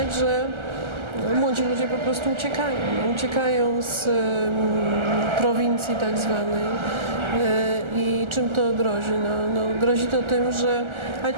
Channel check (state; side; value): late; left; 1.3 ms